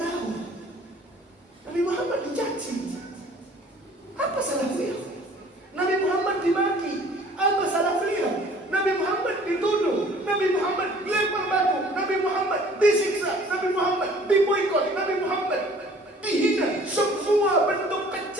Nabi Muhammad dicaci. Apa salah beliau? Nabi Muhammad dimaki. Apa salah beliau? Nabi Muhammad dituduh. Nabi Muhammad dilempar batu. Nabi Muhammad disiksa. Nabi Muhammad diboikot. Nabi Muhammad dihina. Semua bentuk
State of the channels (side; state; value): both; normal; correlation 0.52